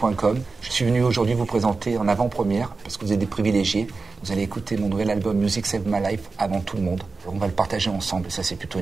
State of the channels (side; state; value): left; quieter; 4.2 dB